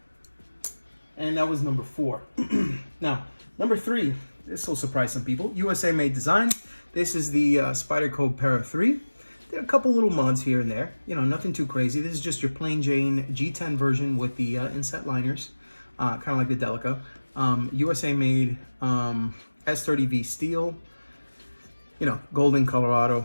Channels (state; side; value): inverted; both; correlation -1.00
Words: And that was number 4. Now, number 3. This will surprise some people. USA made design. This is the Spyderco Para 3. There are a couple little mods here and there. You know, nothing too crazy. This is just your plain Jane G10 version with the inset liners, kind of like the Delica. USA made S30V steel. You know, Golden,